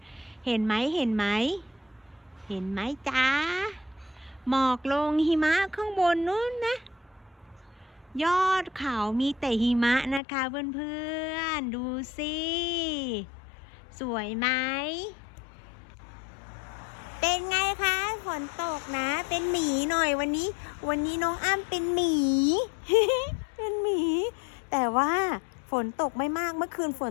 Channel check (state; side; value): drops out; right; at 10.2 s